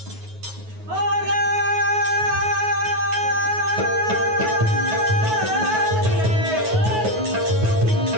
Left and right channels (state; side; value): late; left; 9.4 ms